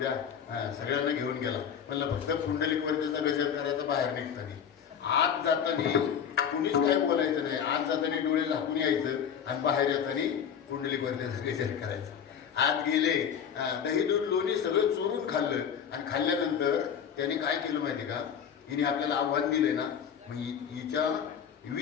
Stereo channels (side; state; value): right; quieter; 8.0 dB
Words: सगळ्यांना घेऊन गेला. मला फक्त पुंडलिक वरतीचा गजर करायचा बाहेर निघताना. आत जाताना कुणीच काय बोलायचं नाही. आत जाताना डोळे झाकून यायचं आणि बाहेर येताना पुंडलिक वरतीचा गजर करायचा. आत गेले, दही दूध लोणी सगळं चोरून खाल्लं आणि खाल्ल्यानंतर त्याने काय केलं माहिती का. हिने आपल्याला आव्हान दिले ना, मग हिच्या